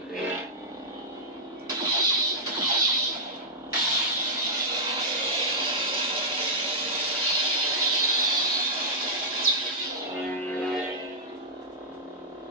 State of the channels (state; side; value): normal; both; correlation -0.09